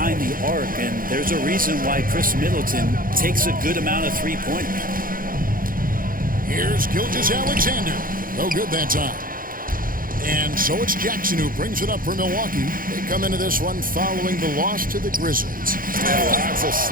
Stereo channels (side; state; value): left; late; 0.41 ms